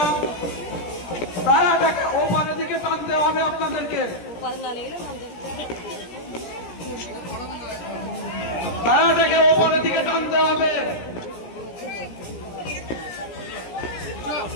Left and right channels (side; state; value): right; late; 17 ms